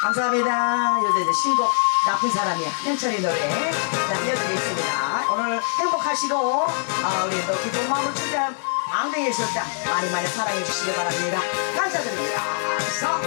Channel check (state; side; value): silent; right; 63 dB below the other